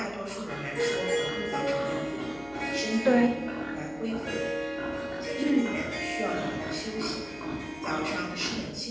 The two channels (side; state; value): left; noise; hum, 22 dB below the sound